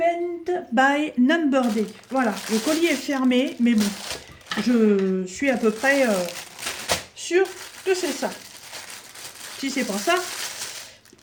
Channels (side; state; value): both; identical; correlation 1.00